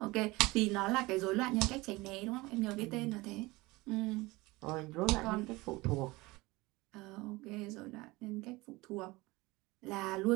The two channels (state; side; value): quieter; left; 21.8 dB